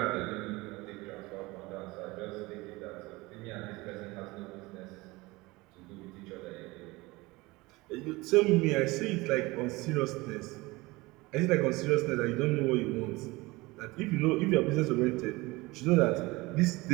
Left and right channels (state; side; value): quieter; left; 22.2 dB